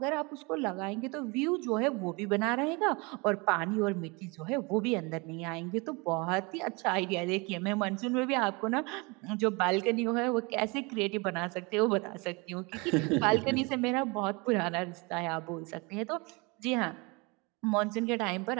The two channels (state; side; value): quieter; left; 27.9 dB